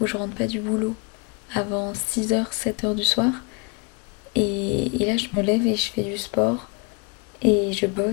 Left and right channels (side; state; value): right; quieter; 31.2 dB